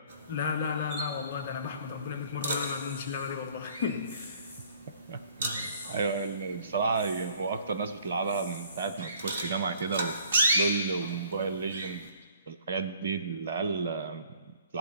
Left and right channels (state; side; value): inverted; both; correlation -0.56